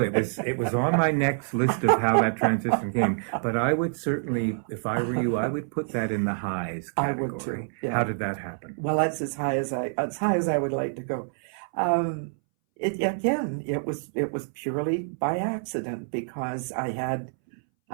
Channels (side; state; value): left; silent; 60 dB below the other